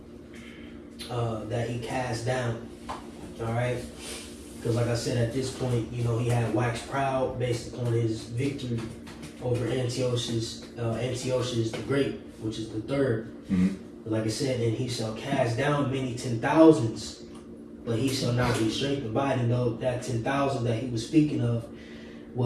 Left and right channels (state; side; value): identical; both; correlation 1.00